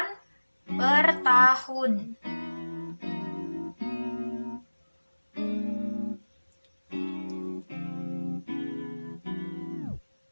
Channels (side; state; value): both; inverted; correlation -1.00